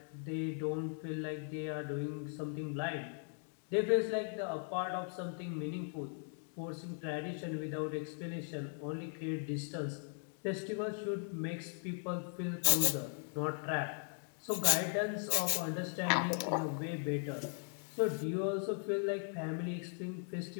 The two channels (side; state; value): right; silent; 52 dB below the other